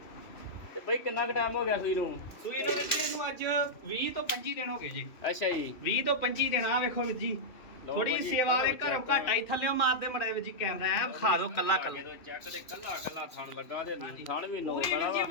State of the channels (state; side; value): late; right; 2.7 ms